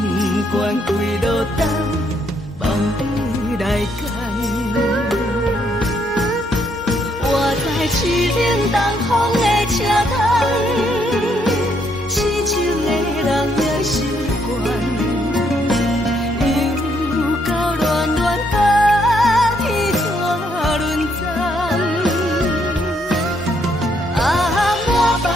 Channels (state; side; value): normal; both; correlation 0.72